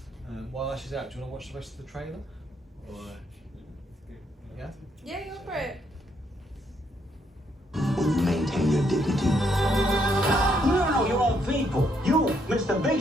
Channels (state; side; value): normal; both; correlation 0.73